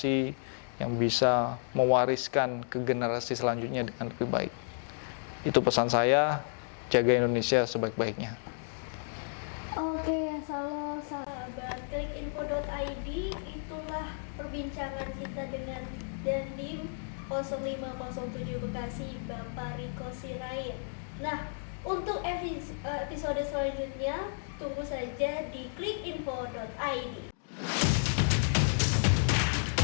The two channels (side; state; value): right; silent; digital silence